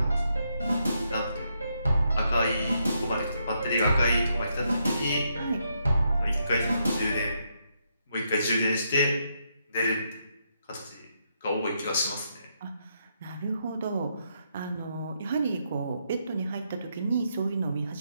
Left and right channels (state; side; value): inverted; both; correlation -0.78